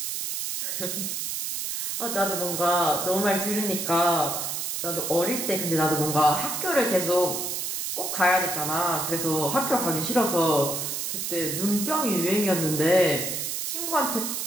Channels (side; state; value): right; noise; hiss, 3 dB below the sound